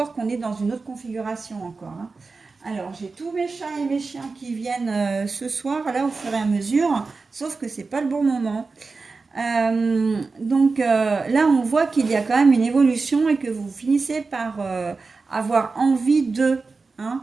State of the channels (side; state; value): left; quieter; 4.1 dB